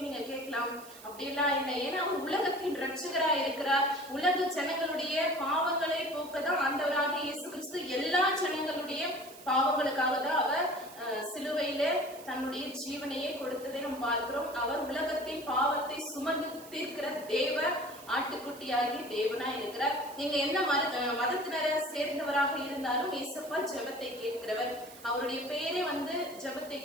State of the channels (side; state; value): right; noise; hiss, 18 dB below the sound